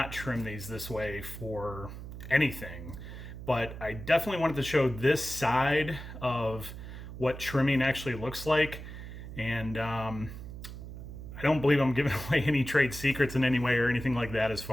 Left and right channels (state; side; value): noise; right; hum, 11 dB below the sound